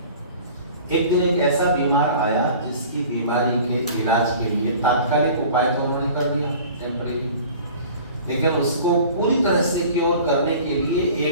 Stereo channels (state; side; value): inverted; both; correlation -0.44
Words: एक दिन एक ऐसा बीमार आया जिसकी बीमारी के इलाज के लिए तात्कालिक उपाय तो उन्होंने कर दिया, टेम्परेरी, लेकिन उसको पूरी तरह से क्योर करने के लिए